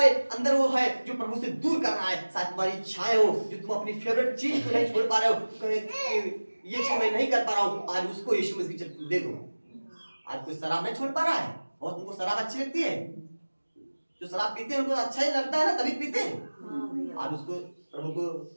अंदर वो है जो प्रभु से दूर कर रहा है, शायद तुम्हारी इच्छाएं हो, जो तुम अपनी फेवरेट चीज को नहीं छोड़ पा रहे हो, ये चीज मैं नहीं कर पा रहा हूँ, आज उसको यीशु मसीह दे दो। आज कोई शराब नहीं छोड़ पा रहा है, और तुमको शराब अच्छी लगती है, जो शराब पीते हैं उनको अच्छा ही लगता है ना, तभी पीते हैं। आज उसको प्रभु को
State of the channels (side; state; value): both; inverted; correlation -1.00